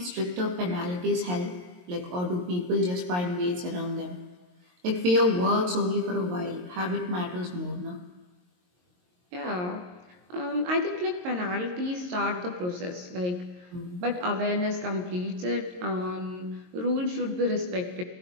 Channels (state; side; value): late; left; 22 ms